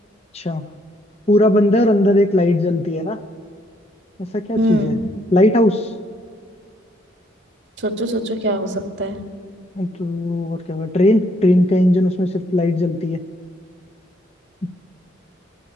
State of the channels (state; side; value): normal; both; correlation 0.70